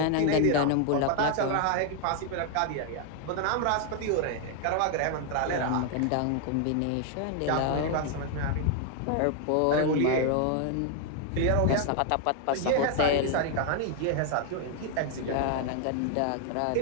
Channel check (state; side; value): different; both; correlation 0.00